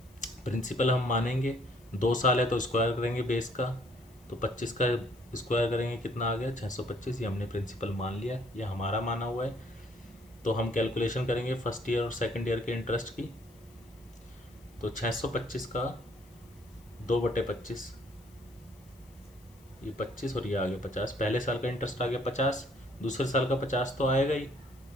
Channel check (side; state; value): left; noise; hiss, 29 dB below the sound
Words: प्रिंसिपल हम मानेंगे 2 साल है तो स्क्वायर करेंगे बेस का, तो 25 का स्क्वायर करेंगे कितना आ गया 625। ये हमने प्रिंसिपल मान लिया, ये हमारा माना हुआ है। तो हम कैलकुलेशन करेंगे फर्स्ट ईयर और सेकंड ईयर के इंटरेस्ट की। तो 625 का 2/25, ये 25 और ये आ गया 50। पहले साल का इंटरेस्ट आ गया 50, दूसरे साल का 50 तो आएगा ही।